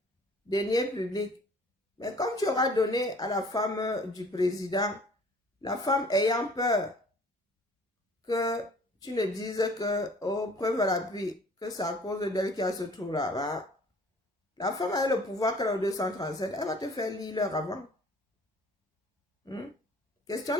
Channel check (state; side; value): normal; both; correlation 0.52